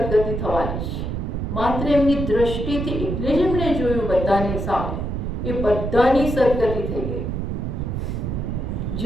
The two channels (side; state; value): right; noise; rumble, 3 dB below the sound